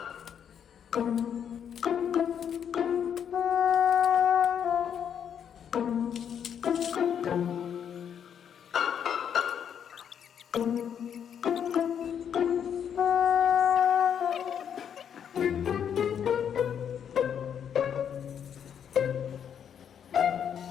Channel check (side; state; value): right; quieter; 8.4 dB